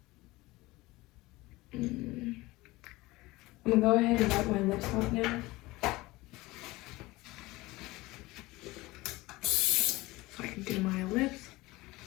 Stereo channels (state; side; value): quieter; right; 20.4 dB